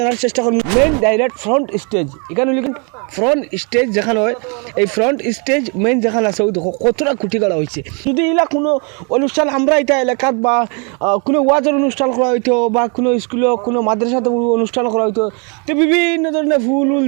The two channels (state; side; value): quieter; left; 35.5 dB